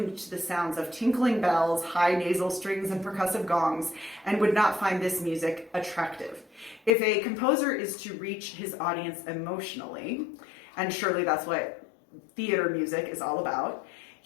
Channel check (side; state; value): right; drops out; at 6.9 s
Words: to the sounds of tinkling bells, high nasal strings, and percussive gongs, and would not find this music attractive. If a composer is to reach his audience emotionally, and surely that's what theater music is all about,